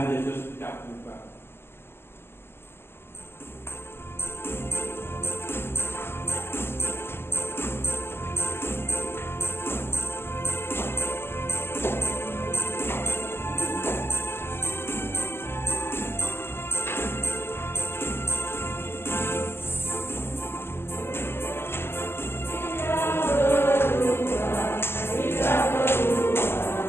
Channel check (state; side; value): late; right; 0.12 ms